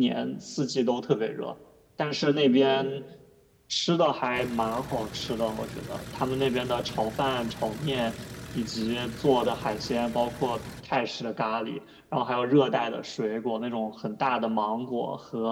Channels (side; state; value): both; identical; correlation 1.00